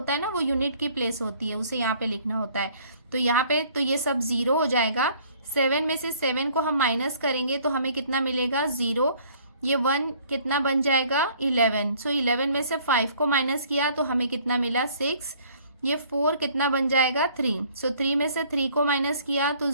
है ना वो यूनिट की प्लेस होती है, उसे यहाँ पे लिखना होता है। तो यहाँ पे तो ये सब 0 हो जाएगा। 7 में से 7 को हम माइनस करेंगे तो हमें कितना मिलेगा 0। ये 1 कितना बन जाएगा 11। सो 11 में से 5 को माइनस किया तो हमें कितना मिला 6। ये 4 कितना बन जाएगा 3। सो 3 में से 3 को माइनस किया तो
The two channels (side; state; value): both; inverted; correlation -0.57